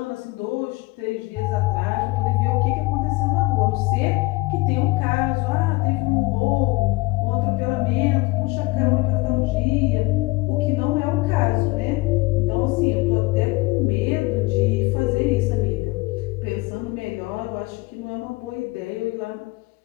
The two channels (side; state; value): right; quieter; 22.5 dB